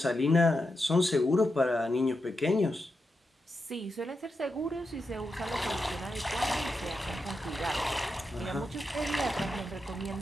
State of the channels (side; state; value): both; normal; correlation 0.87